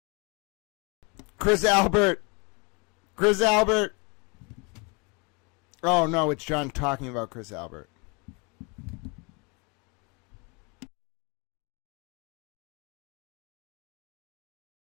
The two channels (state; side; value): quieter; right; 31.0 dB